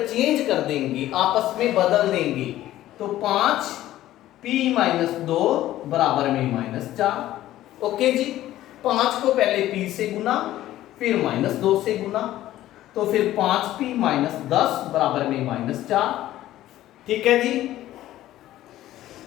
कर देंगे, आपस में बदल देंगे, तो 5p-2 बराबर में -4। ओके जी, 5 को पहले p से गुना, फिर -2 से गुना, तो फिर 5p-10 बराबर में -4, ठीक है जी।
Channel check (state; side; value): quieter; right; 14.2 dB